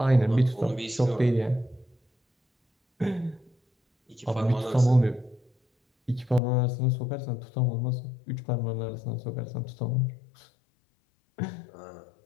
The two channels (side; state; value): right; drops out; at 6.4 s